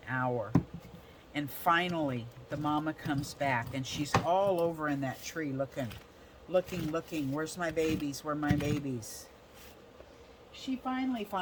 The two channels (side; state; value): both; identical; correlation 1.00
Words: hour. And finally, the mama comes back, and she's all over in that tree looking. Where's my babies? Where are my babies? She finally